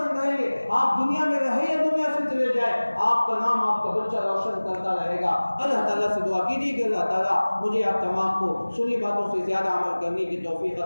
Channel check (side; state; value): both; inverted; correlation -1.00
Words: کریں گے، آپ دنیا میں رہے یا دنیا سے چلے جائے، آپ کا نام آپ کا بچہ روشن کرتا رہے گا۔ اللہ تعالیٰ سے دعا کیجیے کہ اللہ تعالیٰ مجھے آپ تمام کو سنی باتوں سے زیادہ عمل کرنے کی توفیق